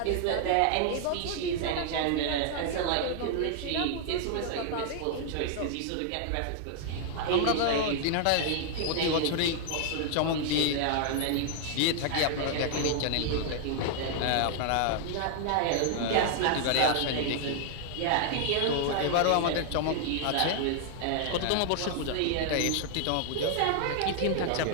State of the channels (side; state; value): both; different; correlation 0.00